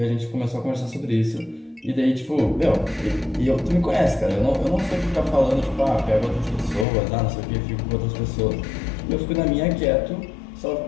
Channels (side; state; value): right; drops out; at 6.9 s